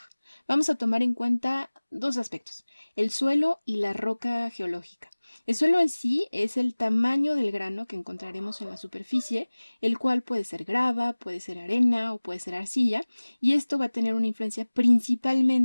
Vamos a tomar en cuenta 2 aspectos: el suelo y la roca geológica. El suelo en sí es el tamaño del grano que encontraremos en la superficie, el cual puede ser grava, puede ser arena o puede ser arcilla, y esto va a tener una influencia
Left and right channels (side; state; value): both; inverted; correlation -1.00